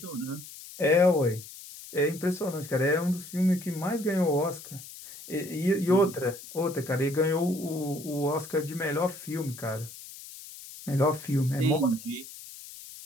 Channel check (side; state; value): left; noise; hiss, 15 dB below the sound